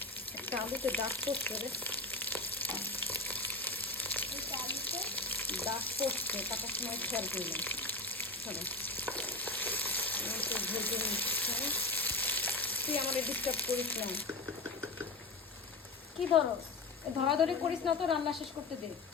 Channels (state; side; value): quieter; right; 3.3 dB